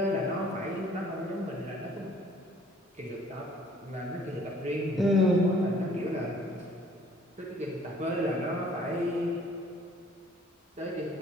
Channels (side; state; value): both; normal; correlation 0.57